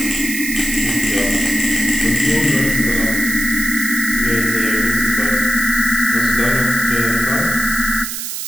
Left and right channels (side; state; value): right; noise; hiss, 5 dB below the sound